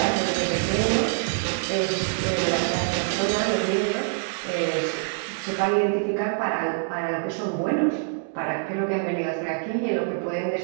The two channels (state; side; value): silent; left; digital silence